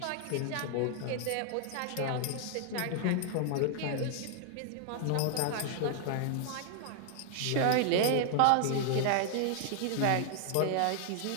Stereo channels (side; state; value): both; different; correlation 0.00